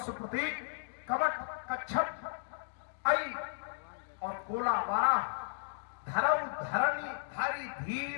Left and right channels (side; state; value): right; silent; digital silence